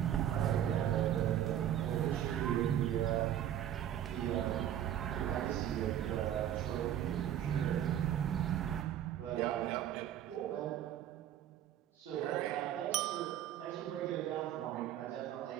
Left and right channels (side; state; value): left; quieter; 10.9 dB